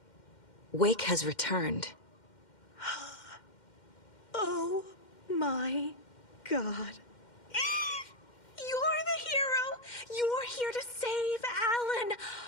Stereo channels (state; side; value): late; right; 2.1 ms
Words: Wake has returned. Oh my God. You're the hero! You're here to save Alan!